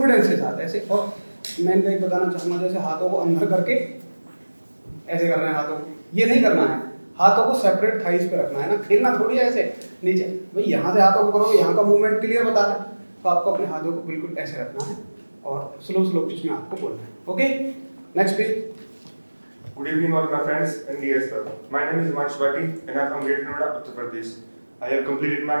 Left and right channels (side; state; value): both; inverted; correlation -1.00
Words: के साथ ऐसे। और मैं इनका एक बताना चाहूँगा, जैसे हाथों को अंदर करके ऐसे करना है, हाथों को ये नहीं करना है, हाथों को सेपरेट थाइस पे रखना है ना, खेलना थोड़ी है ऐसे नीचे। भाई यहाँ से हाथों को करोगे, यहाँ का मूवमेंट क्लियर बता रहा है, तो आपको अपने हाथों को बिल्कुल ऐसे रखना है और स्लो पिच में आपको बोलना है। Okay, next please. Good evening all my friends and dear sir. My name is Himanshu Bhatti and I am from Greater Noida, Uttar Pradesh. I have completed my